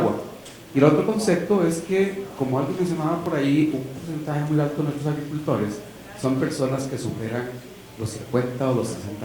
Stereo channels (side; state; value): both; identical; correlation 1.00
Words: Y el otro concepto es que, como alguien mencionaba por ahí, un porcentaje muy alto de nuestros agricultores son personas que superan los 50 o los